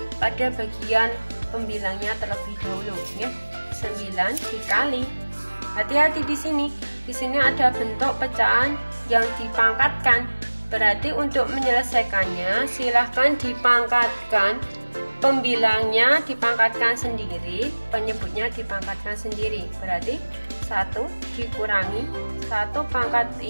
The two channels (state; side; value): inverted; both; correlation -1.00